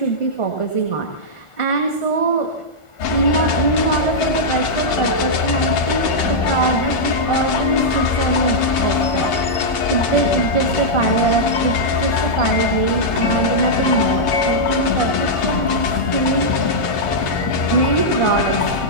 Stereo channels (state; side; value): late; right; 1.5 ms